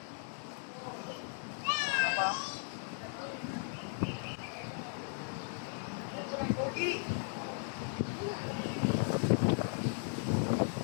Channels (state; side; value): silent; right; 53 dB below the other